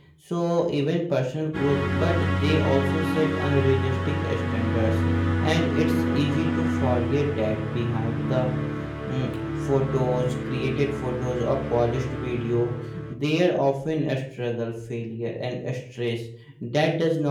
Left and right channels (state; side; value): identical; both; correlation 1.00